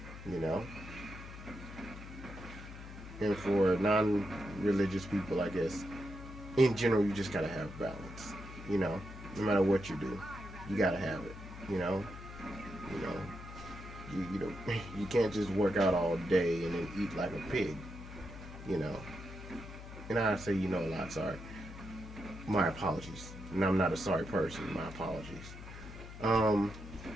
And for non-religious people, I guess, in general, you just gotta have balance. No matter what you do, you gotta have it. You you can't just work out all day and then eat like a pig. And I say a lot. Sorry, my apologies. And I'm not a sorry person. My apologies.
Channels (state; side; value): noise; left; hum, 12 dB below the sound